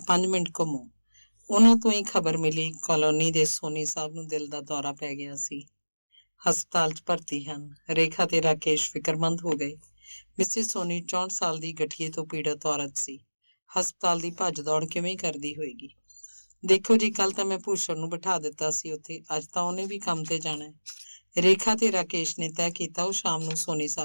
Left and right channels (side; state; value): both; inverted; correlation -1.00